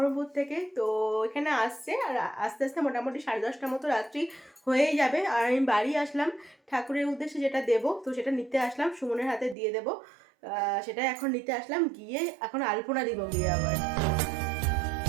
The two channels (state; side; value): drops out; left; at 9.6 s